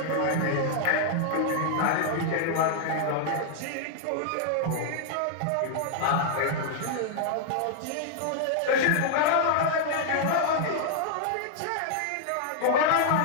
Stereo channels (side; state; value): both; different; correlation -0.01